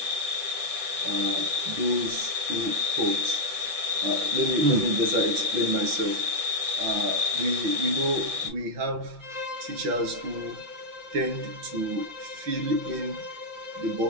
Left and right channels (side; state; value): left; late; 5.8 ms